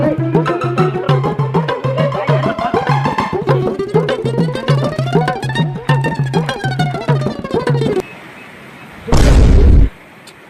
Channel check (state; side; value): identical; both; correlation 1.00